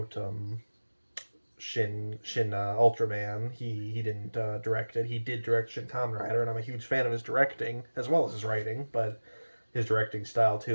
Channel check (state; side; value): inverted; both; correlation -1.00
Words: Shin Ultraman. He didn't direct it. He did direct Shin Kamen Rider, and I'm a huge fan of his directing as well as his writing, but his directing style